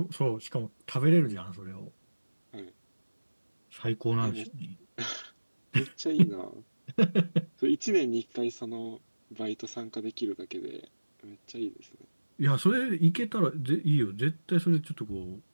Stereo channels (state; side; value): inverted; both; correlation -1.00